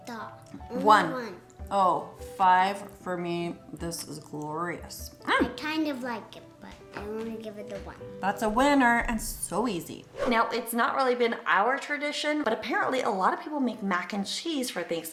star. One. Oh, 5 for me. This is glorious. I kind of like it, but I want to give it a 1. That's a winner and so easy. Now, it's not really been our tradition, but apparently a lot of people make mac and cheese for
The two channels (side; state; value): both; identical; correlation 1.00